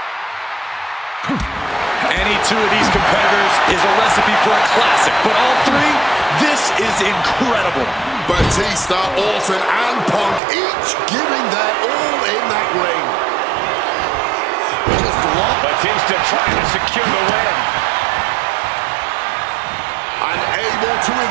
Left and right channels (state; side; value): drops out; left; at 10.4 s